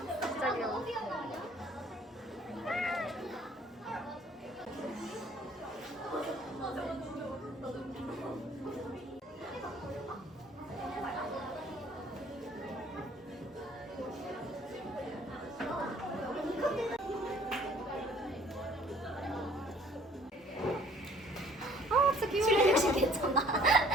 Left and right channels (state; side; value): normal; both; correlation 0.56